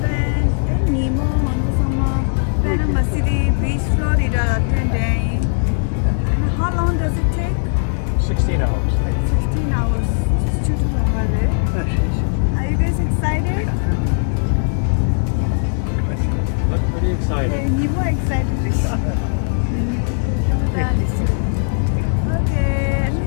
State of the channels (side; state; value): right; silent; digital silence